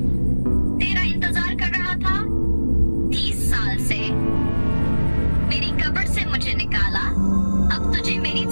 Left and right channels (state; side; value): inverted; both; correlation -1.00